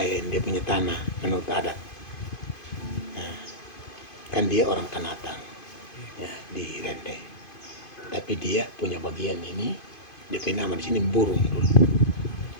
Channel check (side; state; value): right; late; 2.5 ms